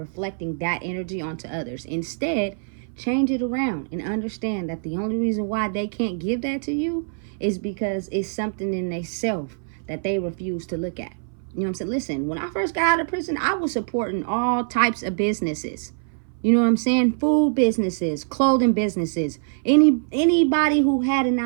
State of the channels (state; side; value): silent; left; 59 dB below the other